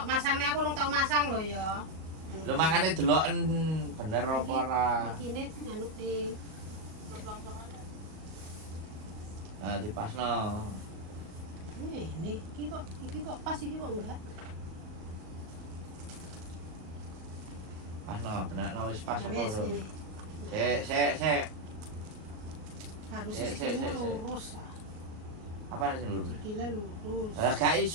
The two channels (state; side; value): late; left; 38 ms